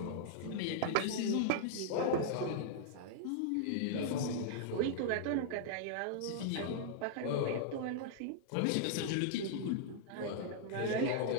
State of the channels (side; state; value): both; different; correlation -0.01